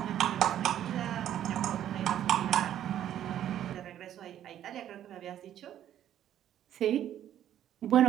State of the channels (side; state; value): left; quieter; 11.1 dB